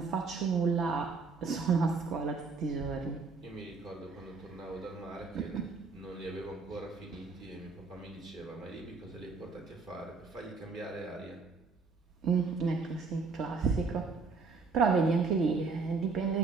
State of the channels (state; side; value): quieter; left; 4.5 dB